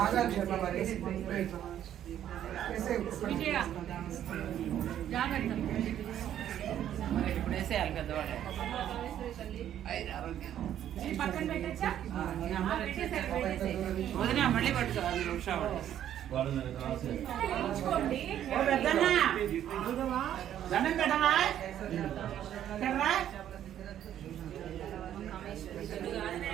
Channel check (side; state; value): left; quieter; 10.9 dB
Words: ఆగాలి శర్మ మరి. విజయ జాగ్రత్త. మరి ఇప్పుడు వేసేయాలి కదా వాళ్ళు. పక్కన పెట్టచ్చా? వదిన మళ్ళీ పట్టుకో. 5 నిమిషాలు వాళ్ళు నాకు రాసేది. తీసుకోండి. పెద్దన్నా దండం పెట్టరా. ఎక్కడ్రా?